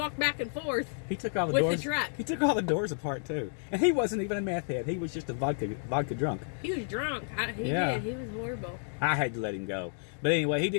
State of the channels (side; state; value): right; silent; digital silence